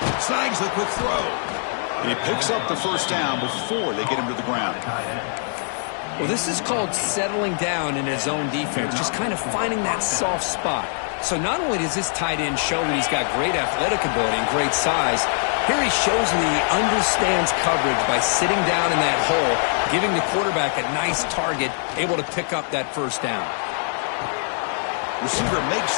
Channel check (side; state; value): right; silent; digital silence